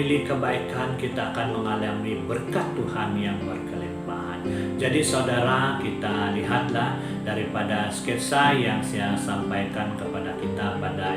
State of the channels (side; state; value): both; identical; correlation 1.00